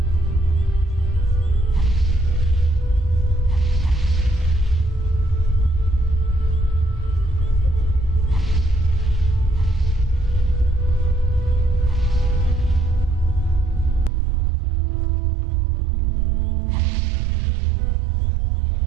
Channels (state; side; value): drops out; left; at 14.1 s